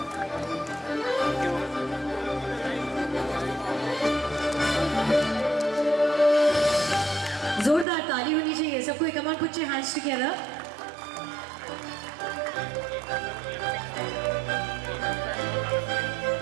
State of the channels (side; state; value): left; drops out; at 7.9 s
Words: सबको, come on, put your hands together.